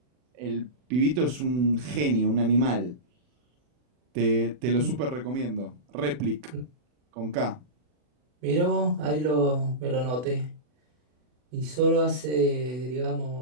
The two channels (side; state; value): left; late; 40 ms